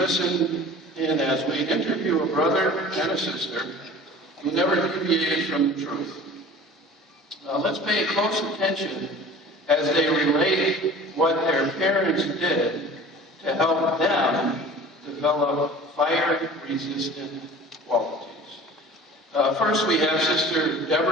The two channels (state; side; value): normal; both; correlation 0.42